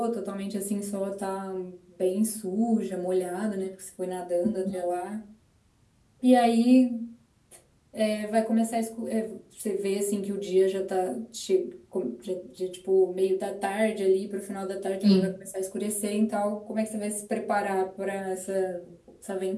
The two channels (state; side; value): identical; both; correlation 1.00